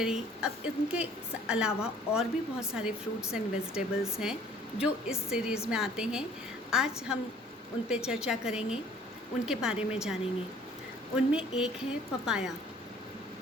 अब इनके अलावा और भी बहुत सारे फ्रूट्स एंड वेजिटेबल्स हैं जो इस सीरीज़ में आते हैं। आज हम उन पे चर्चा करेंगे, उनके बारे में जानेंगे। उनमें एक है papaya.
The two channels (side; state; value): both; normal; correlation 0.55